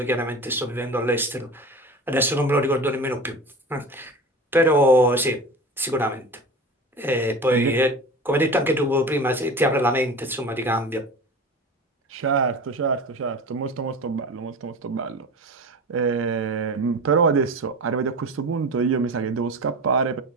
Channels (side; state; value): both; normal; correlation 0.32